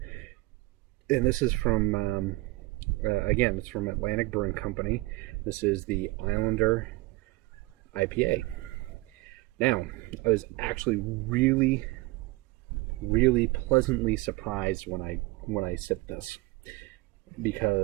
And this is from, again, it's from Atlantic Brewing Company. This is the Islander IPA. Now, I was actually really, really pleasantly surprised when I sipped this,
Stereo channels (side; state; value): left; quieter; 22.2 dB